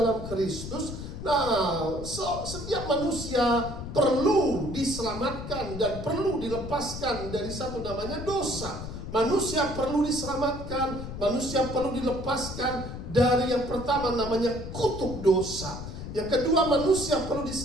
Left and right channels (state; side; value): noise; left; rumble, 9 dB below the sound